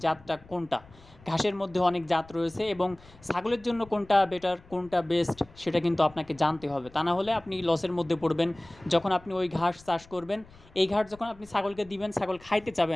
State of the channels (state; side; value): noise; left; rumble, 24 dB below the sound